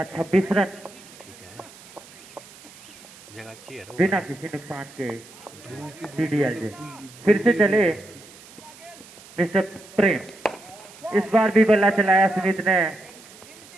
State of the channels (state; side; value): noise; right; hiss, 21 dB below the sound